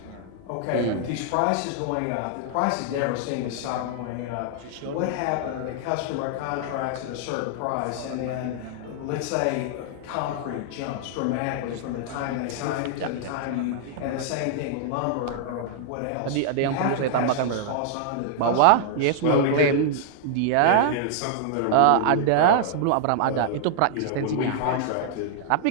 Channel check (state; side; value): different; both; correlation -0.01